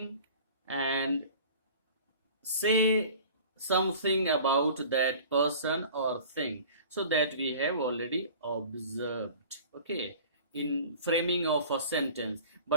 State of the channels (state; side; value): inverted; both; correlation -0.43